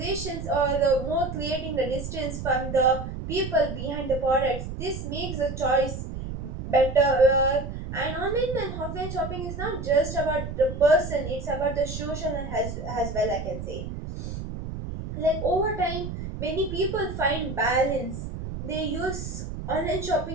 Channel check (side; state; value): right; noise; rumble, 7 dB below the sound